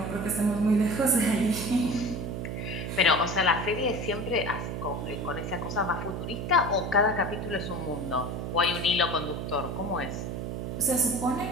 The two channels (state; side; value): noise; right; hum, 4 dB below the sound